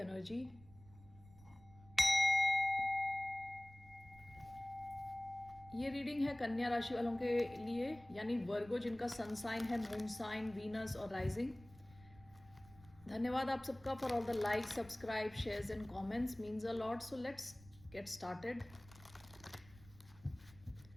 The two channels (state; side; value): noise; right; rumble, 22 dB below the sound